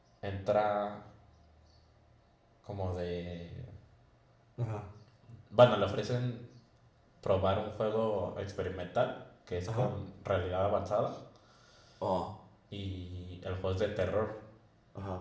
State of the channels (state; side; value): identical; both; correlation 1.00